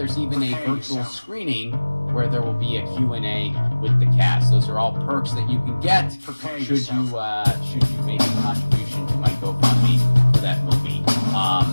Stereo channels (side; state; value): both; inverted; correlation -1.00